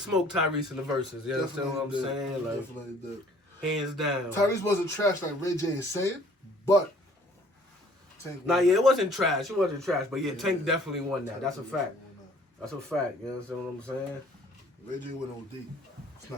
Tyrese in the verses. You understand what I'm saying? Like, definitely did. Hands down. Tyrese wasn't trash like Ray J is saying, but Tank. It wasn't trash. It wasn't trash. But yeah, Tank definitely won that. That's a fact. That's a fact. You understand what I'm saying? Ray J went OD. It's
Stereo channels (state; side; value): normal; both; correlation 0.56